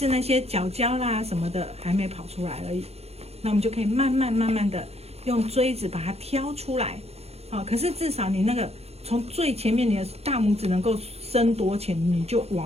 那些角角啦什么的还没跑出来而已。那我们就可以慢慢的用锥子把它挑出来，好，可是至少你那个从最前面你的大拇指能够伸多前，你就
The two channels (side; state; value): left; late; 0.30 ms